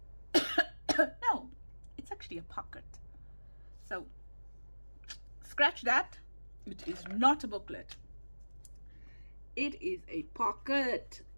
no, it's actually a pocket. So scratch that. It is not a booklet. It is a pocket.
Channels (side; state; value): both; inverted; correlation -1.00